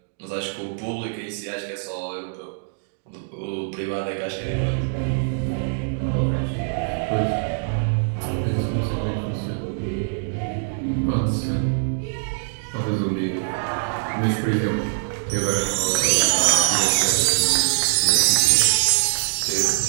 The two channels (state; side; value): silent; left; digital silence